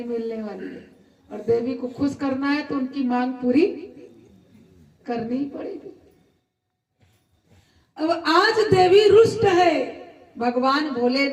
मिलने वाली है। और देवी को खुश करना है तो उनकी मांग पूरी करनी ही पड़ेगी। अब आज देवी रुष्ट है, भगवान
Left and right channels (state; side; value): identical; both; correlation 1.00